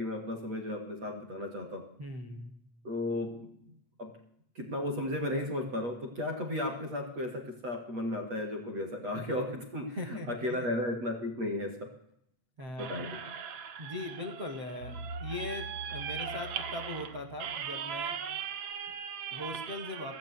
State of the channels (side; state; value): left; late; 8.3 ms